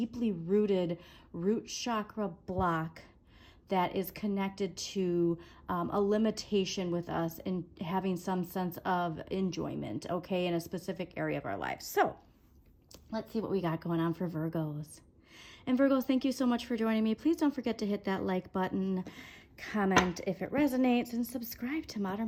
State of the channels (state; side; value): identical; both; correlation 1.00